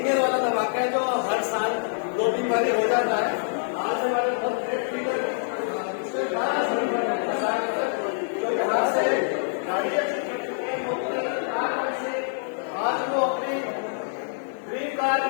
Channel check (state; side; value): silent; right; digital silence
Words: केयर वाला धमाका है जो हर साल 2-3 बार हो जाता है। आज हमारे बहुत ग्रेट लीडर जो यहाँ से गाड़ी आज वो अपनी ड्रीम कार